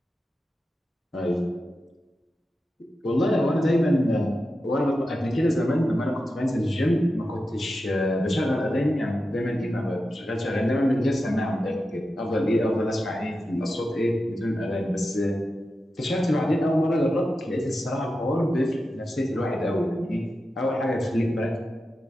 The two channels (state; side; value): normal; both; correlation 0.91